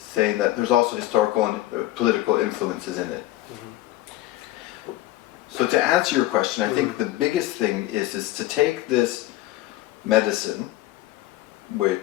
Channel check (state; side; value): quieter; right; 16.2 dB